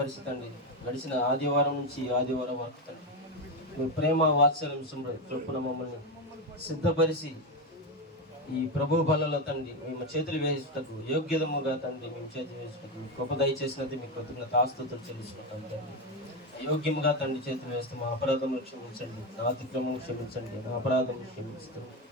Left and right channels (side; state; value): both; normal; correlation 0.11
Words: గడిచిన ఆదివారం నుంచి ఈ ఆదివారం వరకు తండ్రి మీ ప్రేమ వాత్సల్యం చొప్పున మమ్మల్ని సిద్ధపరిచి ఈ ప్రభు బలలో తండ్రి మేము చేతులు వేసుటకు యోగ్యతముగా తండ్రి మేము చేతులు వేసుటకు గొప్ప దయచేసినది మీకు కృతజ్ఞత ఆస్తుతులు చెల్లించుకుంటాం తండ్రి. యోగ్యముగా తండ్రి చేతులు వేస్తే మా అపరాధములు క్షమించండి, నా అతిక్రమం క్షమించండి, నా అపరాధం క్షమించండి